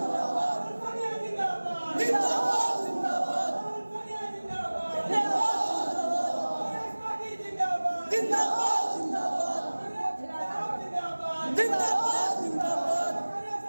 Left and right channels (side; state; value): both; inverted; correlation -1.00